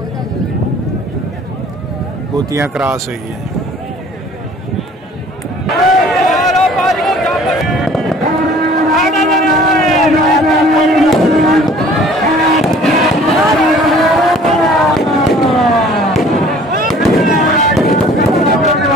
मोतियां क्रॉस हुई है।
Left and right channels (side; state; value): both; normal; correlation 0.51